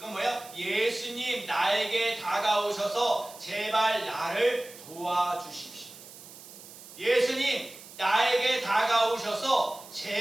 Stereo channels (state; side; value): noise; right; hiss, 17 dB below the sound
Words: 뭐야? 예수님 나에게 다가오셔서 제발 나를 도와주십시오. 예수님 나에게 다가오셔서